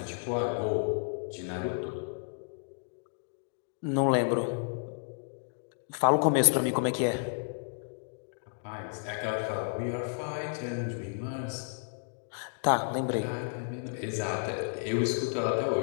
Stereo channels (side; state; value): right; silent; digital silence